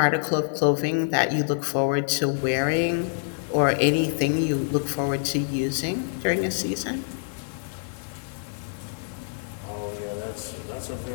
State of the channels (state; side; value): silent; right; digital silence